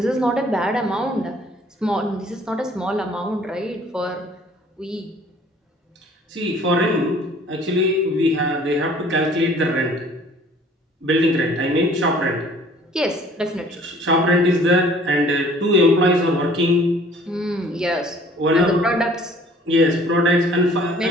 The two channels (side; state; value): both; normal; correlation 0.54